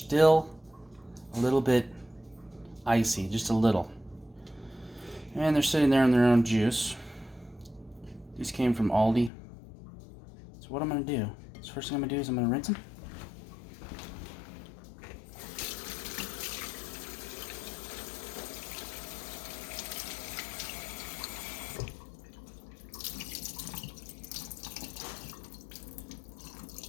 a little bit icy, just a little. And they're sitting there in their own juice. These came from Aldi. So what I'm going to do, the first thing I'm going to do is I'm going to rinse them.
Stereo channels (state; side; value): drops out; right; at 9.3 s